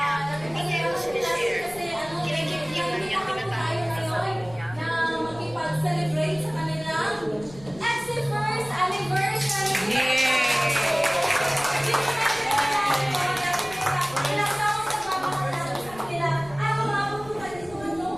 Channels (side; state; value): left; noise; rumble, 20 dB below the sound